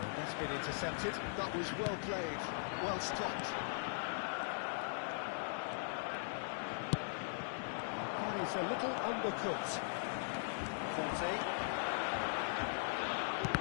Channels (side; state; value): right; silent; digital silence